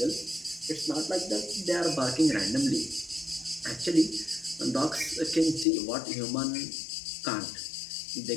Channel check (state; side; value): drops out; right; at 5.7 s